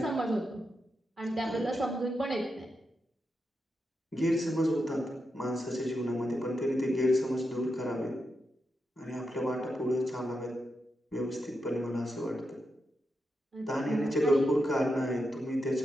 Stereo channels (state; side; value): normal; both; correlation 0.86